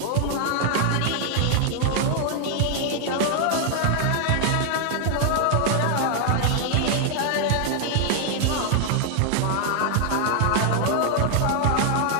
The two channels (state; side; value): different; both; correlation 0.00